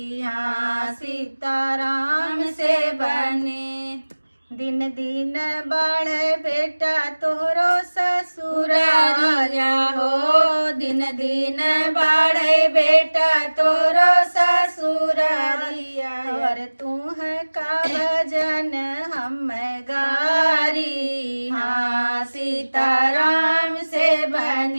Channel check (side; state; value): both; inverted; correlation -1.00